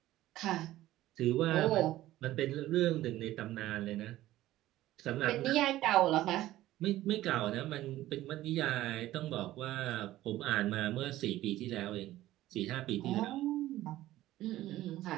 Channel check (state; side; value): quieter; left; 15.2 dB